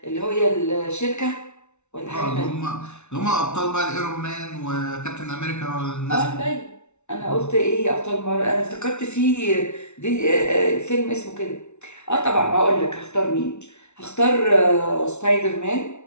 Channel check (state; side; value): late; right; 0.82 ms